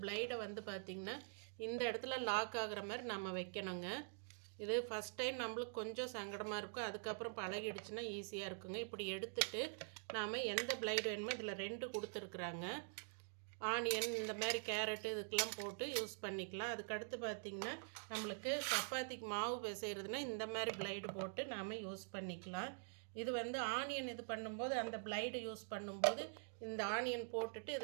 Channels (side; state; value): left; silent; digital silence